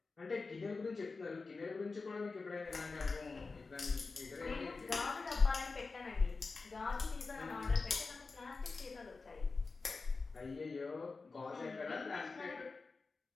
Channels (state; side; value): quieter; right; 4.1 dB